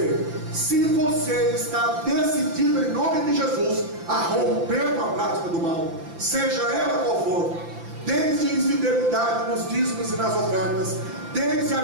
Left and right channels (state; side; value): late; left; 5.9 ms